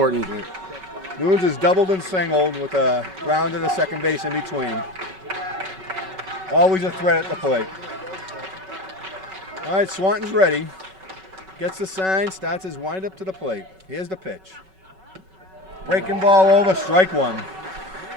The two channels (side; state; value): left; late; 5.3 ms